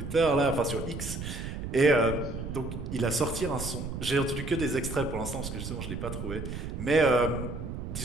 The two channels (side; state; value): right; noise; rumble, 6 dB below the sound